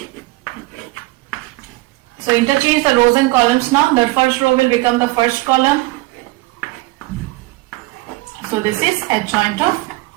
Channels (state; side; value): quieter; left; 20.8 dB